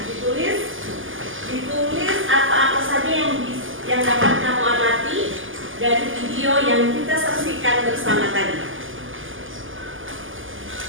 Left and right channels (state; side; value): late; left; 0.58 ms